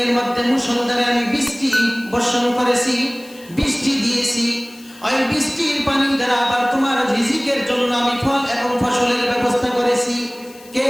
মধ্যে মুষলধারে আমি বৃষ্টি বর্ষণ করেছি, বৃষ্টি দিয়েছি। ওই বৃষ্টির পানি দ্বারা আবার তোমার রিজিকের জন্য আমি ফল এবং ফসলের ব্যবস্থা করেছি। কে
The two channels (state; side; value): noise; left; hiss, 23 dB below the sound